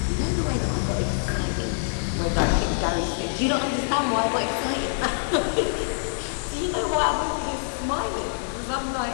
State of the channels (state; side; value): silent; right; 56 dB below the other